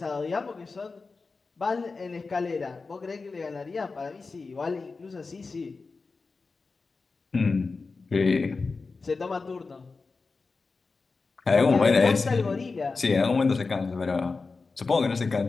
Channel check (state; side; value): quieter; right; 4.2 dB